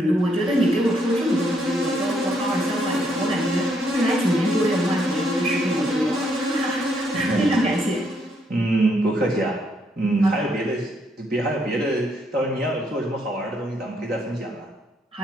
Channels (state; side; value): normal; both; correlation 0.73